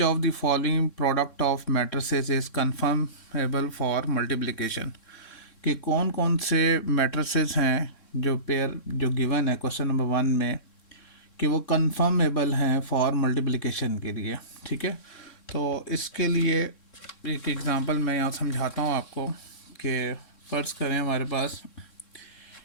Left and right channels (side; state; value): right; late; 3.6 ms